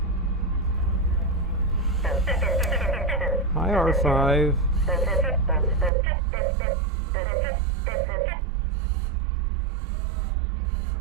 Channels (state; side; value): drops out; left; at 5.9 s